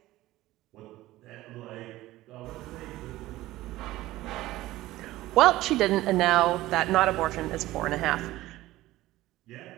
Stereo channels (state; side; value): quieter; left; 16.8 dB